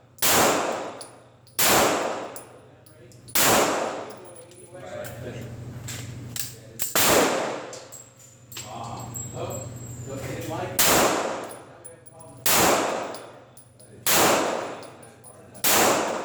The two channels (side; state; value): both; identical; correlation 1.00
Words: Oh, look, they didn't like it.